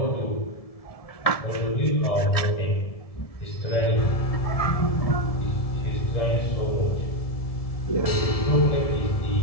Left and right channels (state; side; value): late; right; 1.7 ms